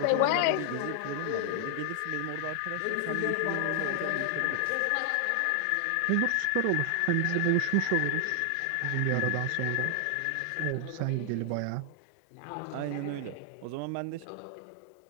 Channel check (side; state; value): both; different; correlation 0.00